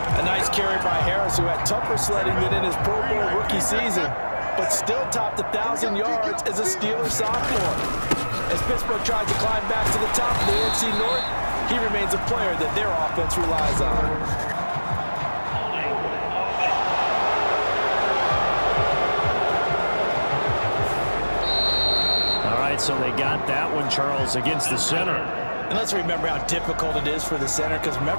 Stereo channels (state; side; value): inverted; both; correlation -1.00